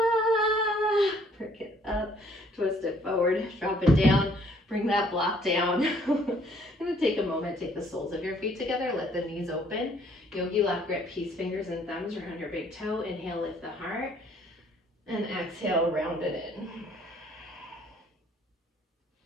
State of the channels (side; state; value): both; normal; correlation 0.62